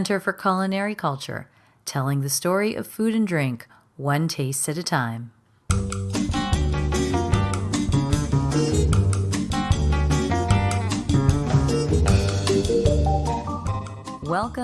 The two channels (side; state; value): both; identical; correlation 1.00